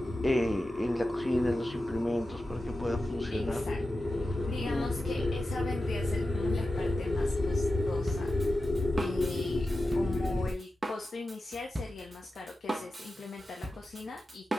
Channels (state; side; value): normal; both; correlation 0.92